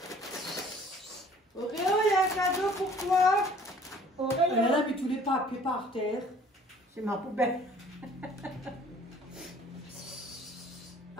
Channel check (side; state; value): both; normal; correlation 0.53